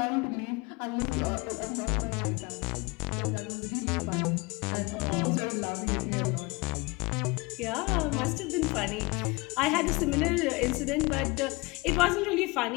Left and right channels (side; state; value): right; quieter; 25.6 dB